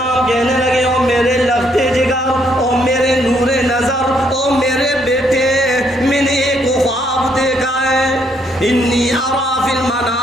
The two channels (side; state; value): both; normal; correlation 0.71